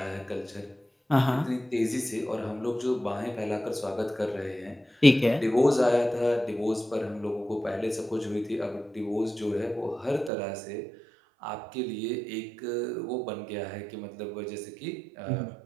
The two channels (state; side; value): drops out; left; at 10.3 s